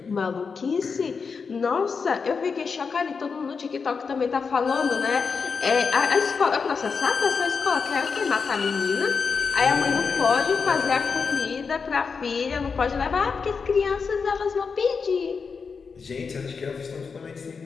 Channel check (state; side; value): quieter; right; 5.3 dB